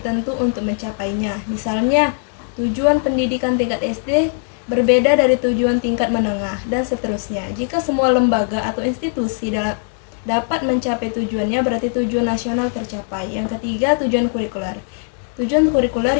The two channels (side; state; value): right; silent; 57 dB below the other